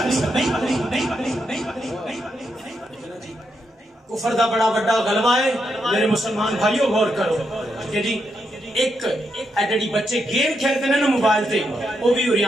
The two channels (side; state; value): both; normal; correlation 0.82